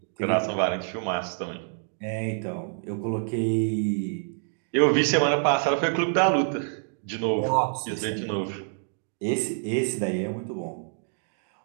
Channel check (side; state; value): left; silent; 58 dB below the other